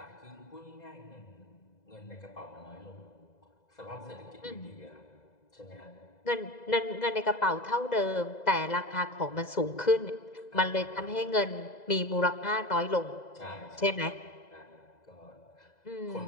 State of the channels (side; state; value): right; late; 2.0 ms